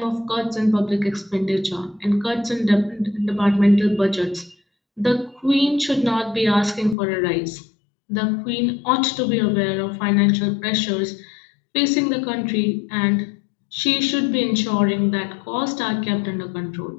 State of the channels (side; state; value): right; drops out; at 7.0 s